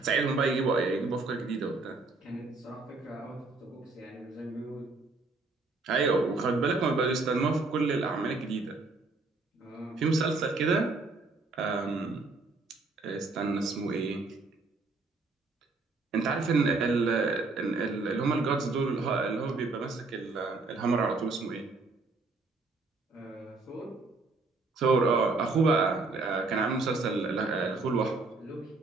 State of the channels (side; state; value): left; quieter; 3.7 dB